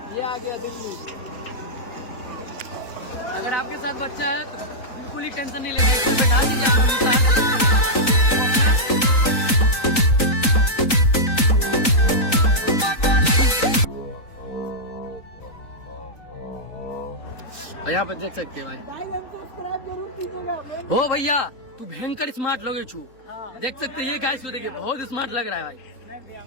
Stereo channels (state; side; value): late; right; 3.9 ms